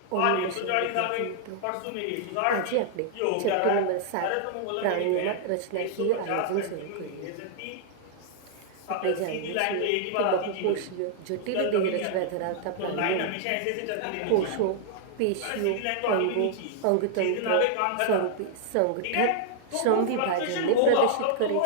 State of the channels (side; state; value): both; different; correlation -0.01